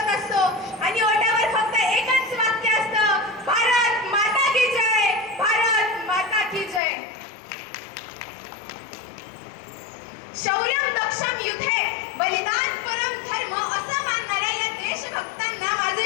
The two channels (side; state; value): right; drops out; at 6.8 s